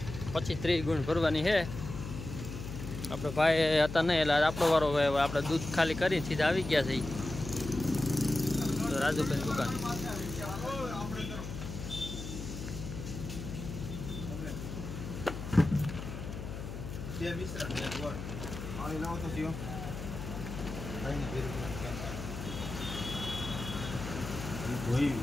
25-30 ગુણ ભરવાની છે। આપણે ભાઈ હતા નહીં એટલે આપણો વારો આપણે દૂધ ખાલી કરી સીધા આવી ગયા છે રાજુભાઈ દુકાન। બે મિશ્રણ ને ગોળ આની લાવો તો જીઓ ભાઈ ને ભેરું ધોઈ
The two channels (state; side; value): noise; left; hum, 8 dB below the sound